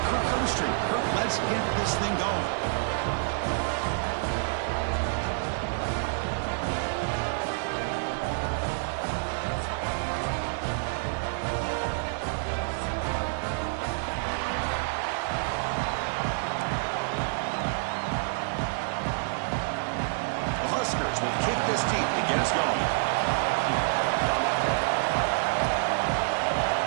Kirk Cumstreet. Kirk, let's get this thing going. The Huskers will kick this team to get us going.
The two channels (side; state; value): left; silent; digital silence